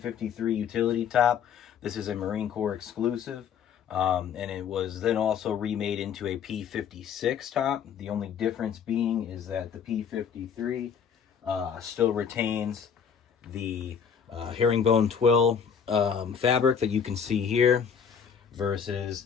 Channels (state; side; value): quieter; right; 7.3 dB